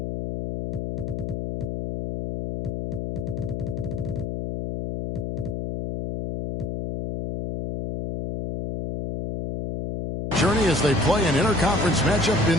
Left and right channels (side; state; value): left; noise; hum, 5 dB below the sound